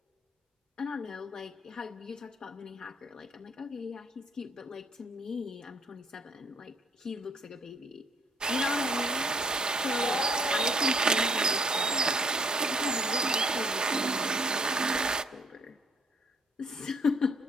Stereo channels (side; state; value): both; normal; correlation 0.62